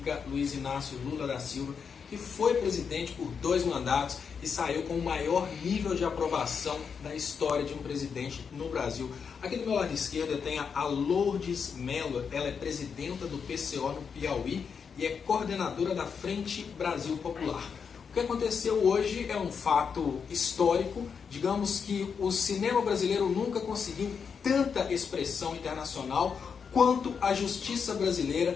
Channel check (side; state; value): right; quieter; 6.3 dB